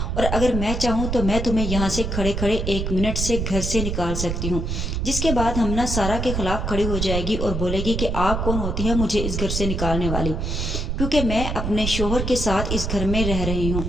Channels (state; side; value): noise; right; rumble, 2 dB below the sound